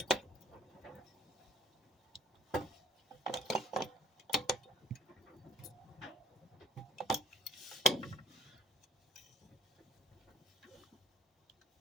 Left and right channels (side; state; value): both; normal; correlation 0.53